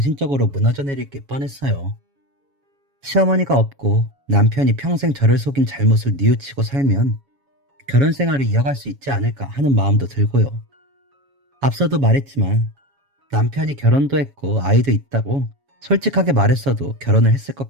무너져 내릴 게 뻔했어요. 시어머니가 없고 남편이 평생 저를 속인 잘못을 뉘우치고 살면 결혼 생활을 이어갈 수 있지 않을까 하는 마음도 들고요. 앞서도 말했지만 남편이 결혼도 했고 아이도 있다고 솔직하게 말했어도 결혼을 했을 것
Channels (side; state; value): left; late; 7.2 ms